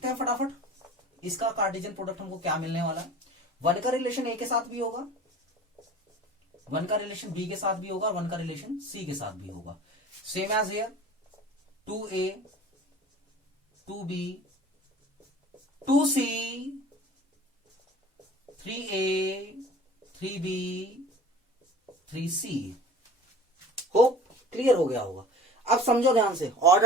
हैं फटाफट इसका कार्टेशियन प्रोडक्ट हमको क्या मिलने वाला है। वन का रिलेशन ए के साथ भी होगा, वन का रिलेशन बी के साथ भी होगा, वन का रिलेशन सी के साथ भी होगा। Same as here 2a 2b 2c 3a 3b 3c। Hope clear हो गया होगा। अब समझो ध्यान से,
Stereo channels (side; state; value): both; normal; correlation 0.42